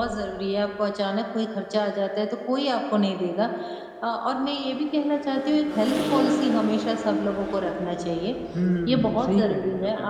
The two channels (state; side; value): identical; both; correlation 1.00